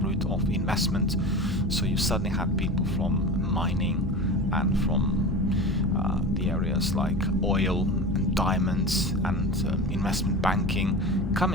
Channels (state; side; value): normal; both; correlation 0.30